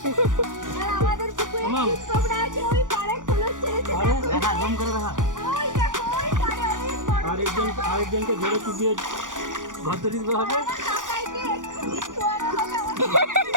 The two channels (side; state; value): left; late; 0.88 ms